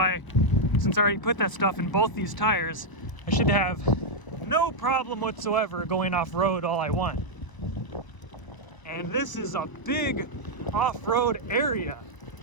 since I already put that stuff in both these tires, I should have no problem whatsoever going off-road all I want. And this is a big off-road area,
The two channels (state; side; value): late; right; 1.0 ms